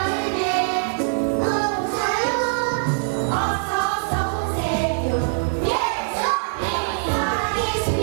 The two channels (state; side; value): silent; left; 59 dB below the other